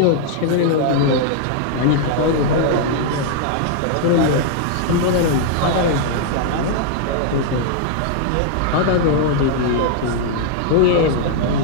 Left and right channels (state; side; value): different; both; correlation -0.01